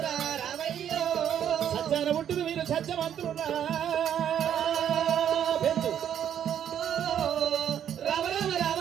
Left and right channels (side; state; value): left; quieter; 9.6 dB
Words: సత్యాన పుట్టిన మీరు సత్యవంతులున్నా.